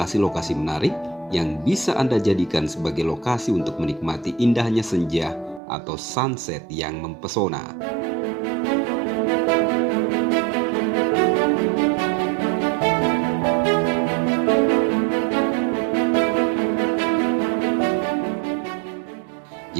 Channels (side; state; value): left; drops out; at 5.6 s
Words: menarik yang bisa Anda jadikan sebagai lokasi untuk menikmati indahnya senja atau sunset yang mempesona.